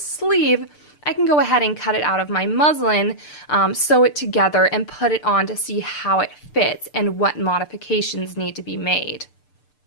I can go ahead and cut it out of my muslin, sew it together, and put it on to see how it fits and what modifications need to be made.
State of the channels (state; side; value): late; right; 6.7 ms